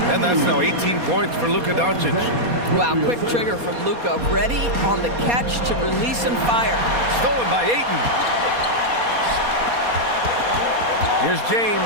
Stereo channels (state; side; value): late; left; 4.2 ms